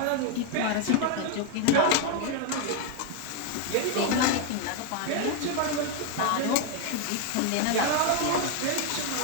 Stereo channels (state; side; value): different; both; correlation 0.01